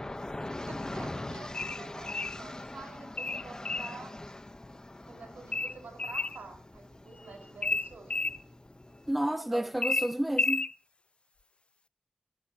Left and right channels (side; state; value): both; normal; correlation 0.77